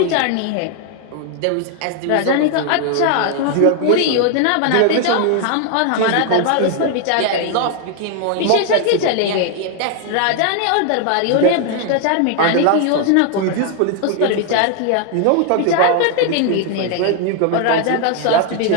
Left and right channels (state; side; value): different; both; correlation 0.00